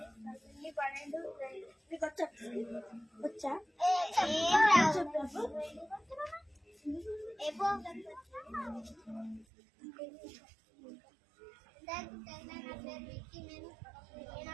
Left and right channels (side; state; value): left; drops out; at 9.5 s